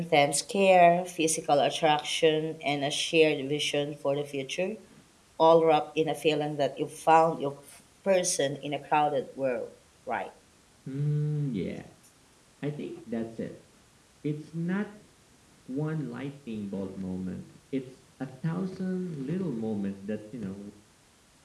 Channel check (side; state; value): both; identical; correlation 1.00